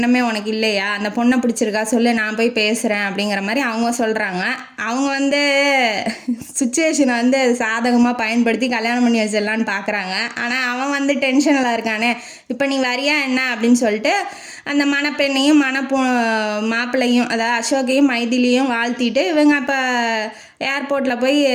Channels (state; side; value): identical; both; correlation 1.00